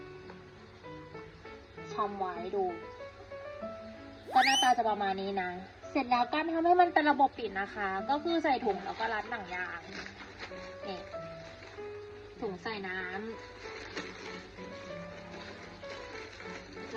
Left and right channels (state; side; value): identical; both; correlation 1.00